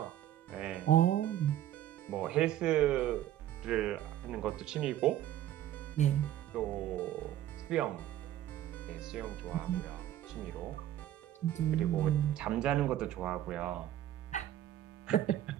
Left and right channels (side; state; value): left; quieter; 12.3 dB